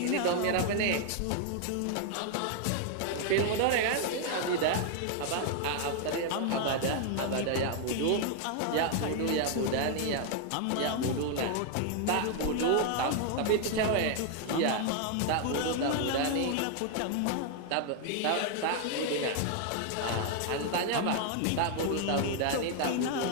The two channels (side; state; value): both; different; correlation 0.00